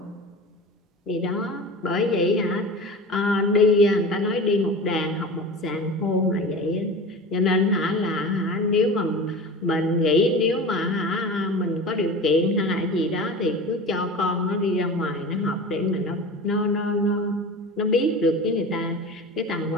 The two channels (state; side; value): normal; both; correlation 0.33